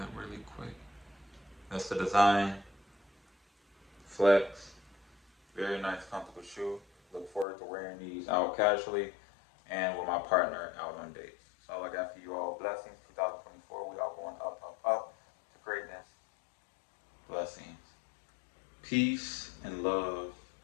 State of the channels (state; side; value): drops out; right; at 7.5 s